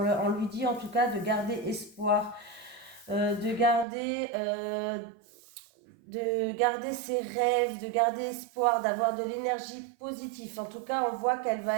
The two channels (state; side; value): drops out; left; at 3.9 s